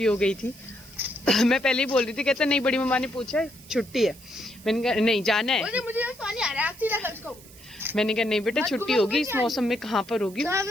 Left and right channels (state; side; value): noise; right; hiss, 21 dB below the sound